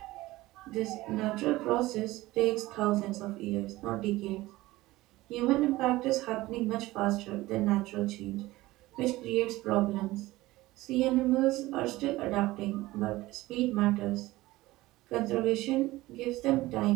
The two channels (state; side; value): quieter; left; 18.4 dB